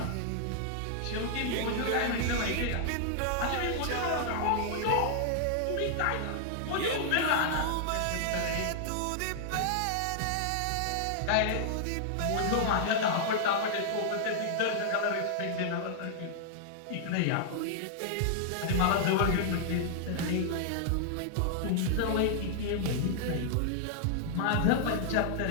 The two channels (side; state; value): both; different; correlation -0.01